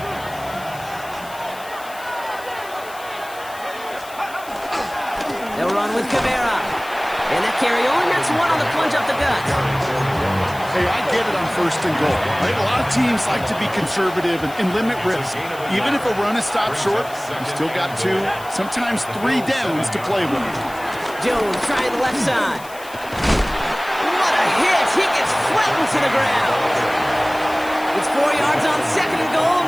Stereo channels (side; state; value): left; noise; hiss, 19 dB below the sound